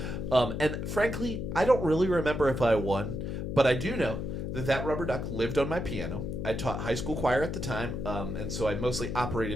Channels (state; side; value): noise; left; hum, 4 dB below the sound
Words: And frankly, I don't really remember if I won, but I do know that rubber duck lived on my piano. I taught high school choir at the time, and so I mostly